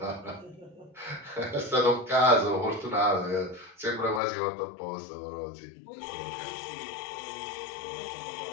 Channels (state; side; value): drops out; right; at 4.2 s